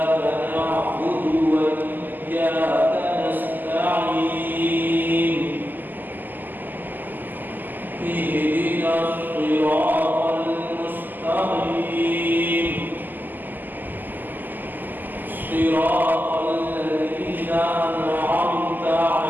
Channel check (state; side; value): late; left; 0.087 ms